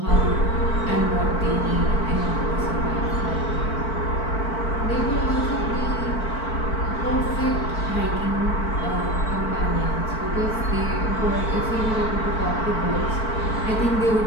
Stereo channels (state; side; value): late; right; 4.5 ms